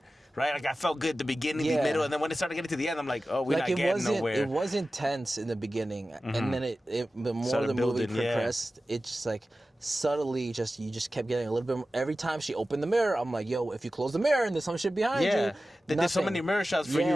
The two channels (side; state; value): both; normal; correlation 0.95